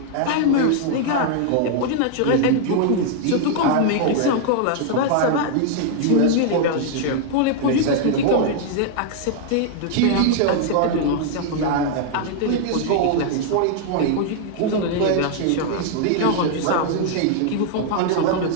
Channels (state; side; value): different; both; correlation 0.00